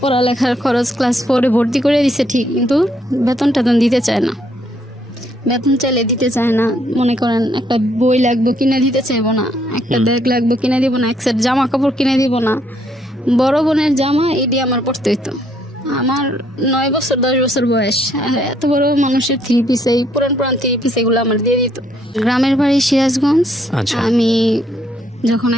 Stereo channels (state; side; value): normal; both; correlation 0.70